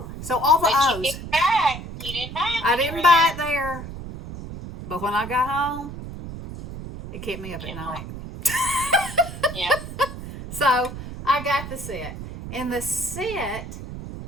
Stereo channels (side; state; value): right; noise; rumble, 10 dB below the sound